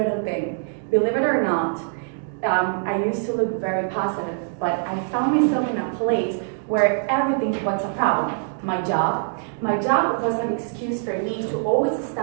thing. Believe it or not, I used to look very positive, but I found myself in a place where everything was a problem. My job was an excuse for me to always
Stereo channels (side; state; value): left; silent; 63 dB below the other